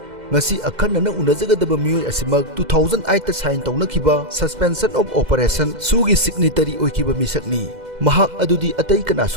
Ngasi akhanna unajagadaba miyoi asimak 2008 ta sign tawnakhiba suspension of operation SoO Signatory oikiba misakni. Mahak adudi atay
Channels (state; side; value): late; left; 2.1 ms